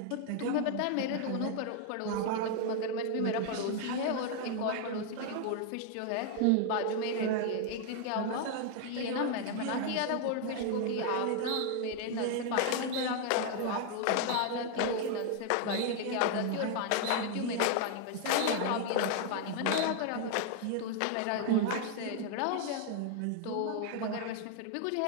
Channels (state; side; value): different; both; correlation 0.00